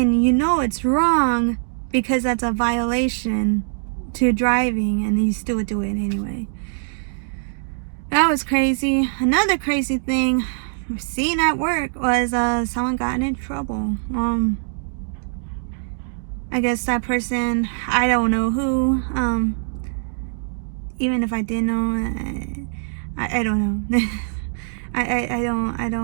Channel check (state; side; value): silent; left; digital silence